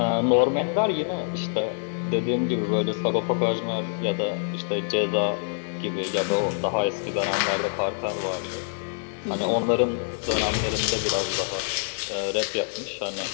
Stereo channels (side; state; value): right; silent; digital silence